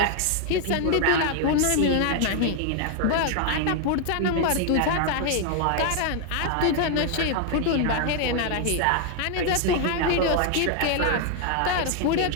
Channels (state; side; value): different; both; correlation 0.00